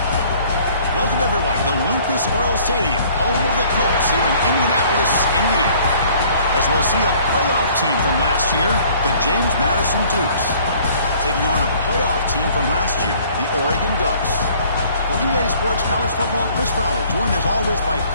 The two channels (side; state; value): both; inverted; correlation -0.56